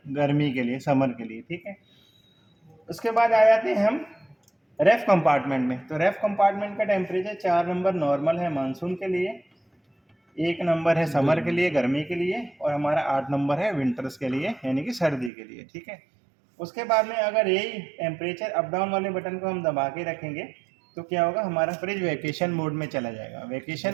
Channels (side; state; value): left; drops out; at 15.3 s